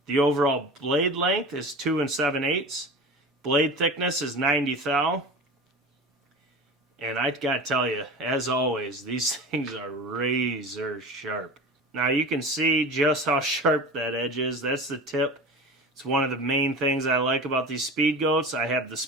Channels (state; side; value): normal; both; correlation 0.33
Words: The overall blade length is 2 7/8. Blade thickness is 90 thou. And I gotta tell you, as always, these things are razor sharp. Now you can see just how sharp that edge is. That's the tip. It's one of the main things I like about these Speedgoats. I have the